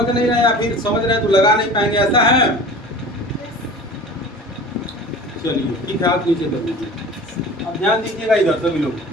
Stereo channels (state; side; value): normal; both; correlation 0.39